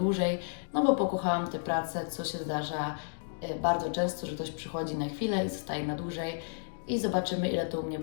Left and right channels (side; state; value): right; silent; digital silence